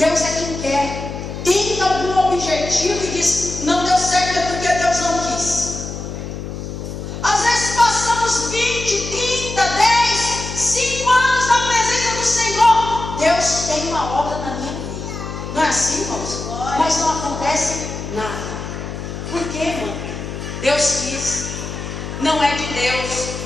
é quem quer. Tem algum objetivo e diz: não deu certo, é porque Deus não quis. Às vezes passamos 20, 30, 10, 5 anos na presença do Senhor. Deus tem uma obra na minha vida. Não é assim, irmãos? Mas não acontece nada. Por quê, irmão? Deus quis. Não é de Deus.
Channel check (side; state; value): left; noise; hum, 8 dB below the sound